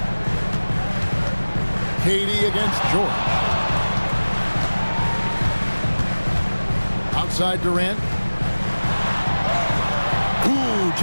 KD against George. Outside Durant. Ooh,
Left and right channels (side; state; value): both; inverted; correlation -1.00